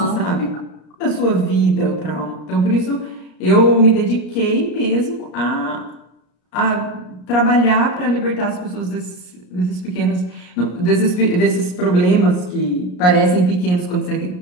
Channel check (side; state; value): right; late; 33 ms